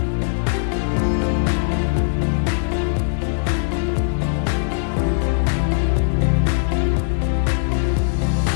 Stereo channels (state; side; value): silent; right; digital silence